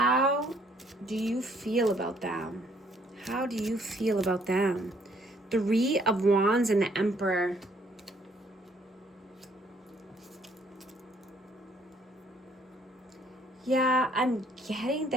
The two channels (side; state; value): both; normal; correlation 0.64